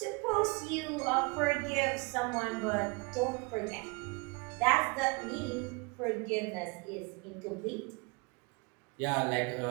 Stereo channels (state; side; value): quieter; left; 29.9 dB